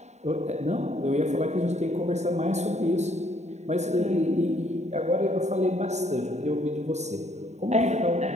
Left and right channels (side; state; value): left; late; 0.33 ms